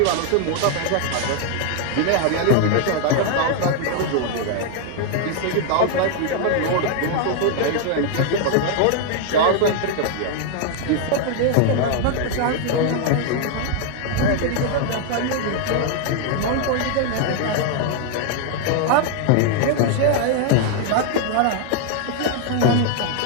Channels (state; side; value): different; both; correlation 0.00